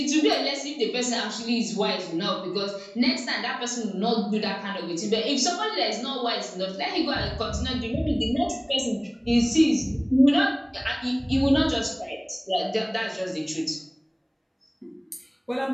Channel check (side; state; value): both; identical; correlation 1.00